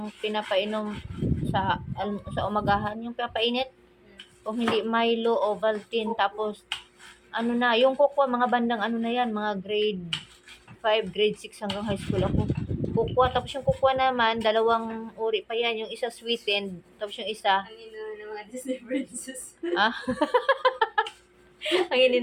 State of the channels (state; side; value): identical; both; correlation 1.00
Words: pinapainom sa umagahan, yung pinapainit. Kung hindi Milo, Ovaltine, tapos, yung cocoa, mga bandang na yan, mga grade 5, grade 6 hanggang high school ako. Cocoa, tapos yung cocoa naman, dalawang uri pa yan, yung isa sweetened, tapos yung isa, Ang ino ng mga Disney princess. ang